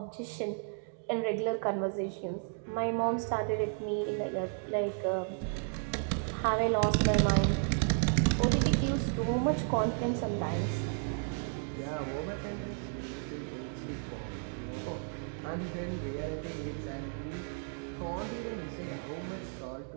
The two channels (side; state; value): left; silent; 55 dB below the other